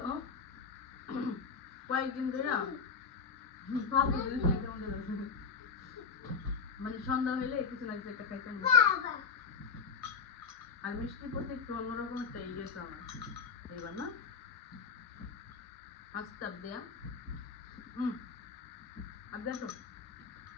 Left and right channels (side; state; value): right; quieter; 5.5 dB